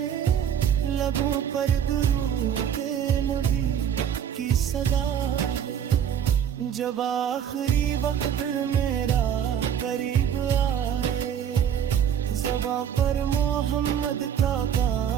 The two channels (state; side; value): quieter; left; 8.9 dB